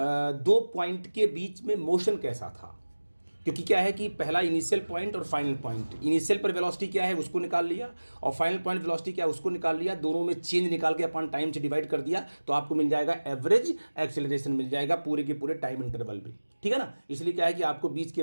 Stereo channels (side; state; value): both; inverted; correlation -1.00